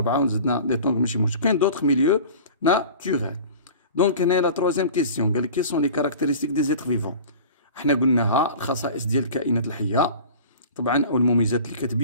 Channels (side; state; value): both; inverted; correlation -0.40